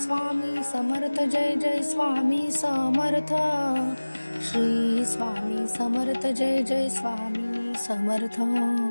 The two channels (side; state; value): both; inverted; correlation -1.00